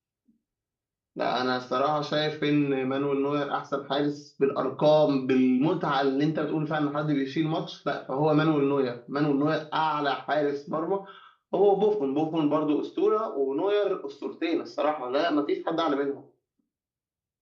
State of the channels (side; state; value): both; identical; correlation 1.00